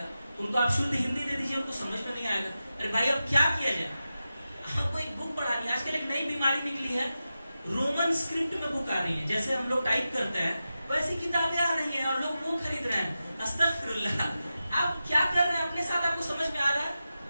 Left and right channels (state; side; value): inverted; both; correlation -0.92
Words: उनको आप शुद्ध हिंदी दे दीजिए, उनको समझ में नहीं आएगा। अरे भाई अब क्या किया जाए, आपको एक बुक पढ़ानी है। आजकल एक नई बीमारी निकली है, रोमन स्क्रिप्ट में बुक आ रही है, जैसे हम लोग टाइप करते हैं वैसी किताबें आ रही हैं और लोग वो खरीद रहे हैं। अस्तगफिरुल्लाह, आप क्या कर रहे हैं अपने साथ, आपको समझ में आ रहा है?